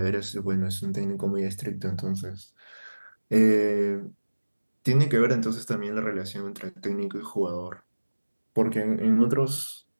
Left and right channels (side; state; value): both; inverted; correlation -1.00